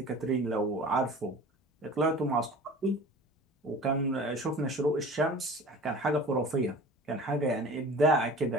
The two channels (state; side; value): normal; both; correlation 0.41